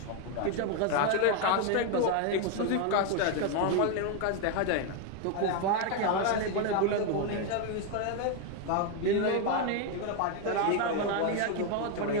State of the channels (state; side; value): different; both; correlation 0.01